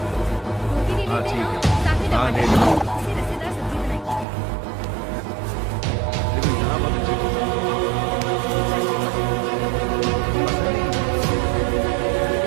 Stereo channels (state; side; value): drops out; left; at 4.2 s